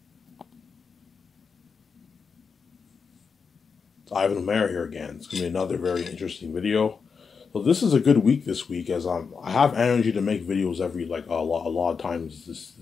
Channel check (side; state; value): right; quieter; 5.6 dB